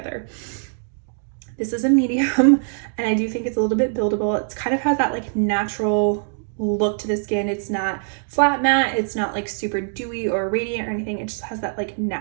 This is a medium, and I do think it's a little bit buildable. It kind of has that like natural look to the skin. It's not flat matte. It's not like super dewy or radiant or anything. It just has that like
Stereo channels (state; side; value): silent; left; digital silence